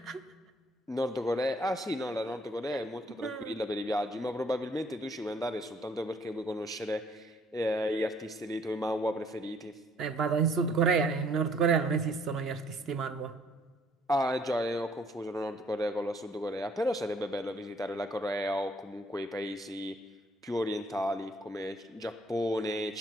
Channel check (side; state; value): both; normal; correlation 0.63